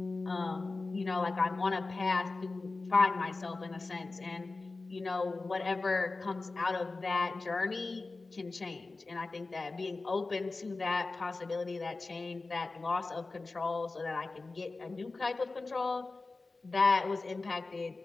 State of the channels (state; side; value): quieter; right; 3.6 dB